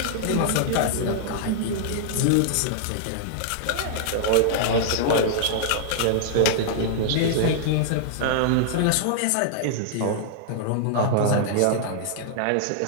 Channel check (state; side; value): different; both; correlation -0.01